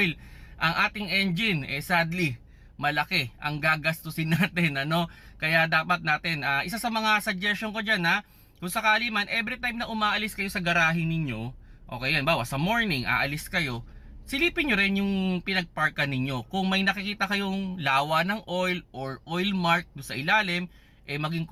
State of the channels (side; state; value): both; identical; correlation 1.00